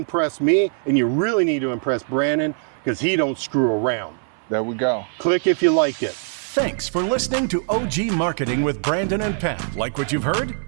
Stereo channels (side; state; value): left; silent; 60 dB below the other